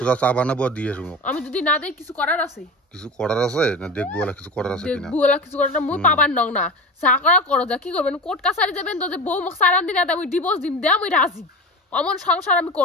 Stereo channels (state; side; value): normal; both; correlation 0.30